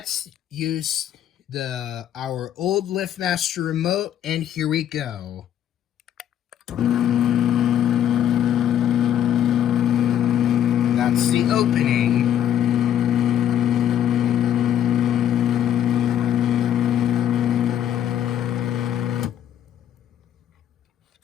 use our old LiftMaster remote, and here we go. That's the opening.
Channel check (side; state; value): right; quieter; 10.4 dB